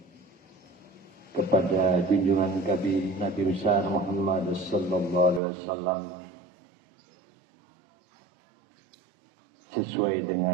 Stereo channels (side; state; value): left; drops out; at 5.4 s